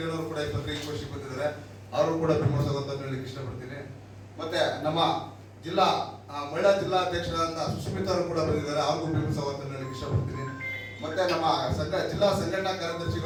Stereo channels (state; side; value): identical; both; correlation 1.00